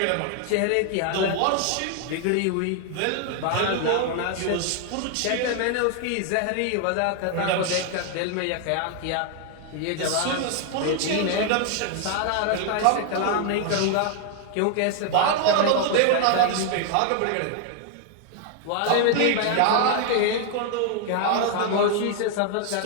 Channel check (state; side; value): different; both; correlation 0.00